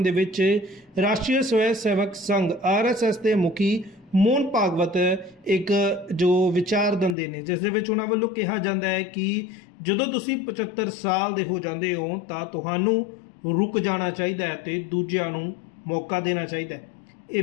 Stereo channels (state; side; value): drops out; right; at 7.2 s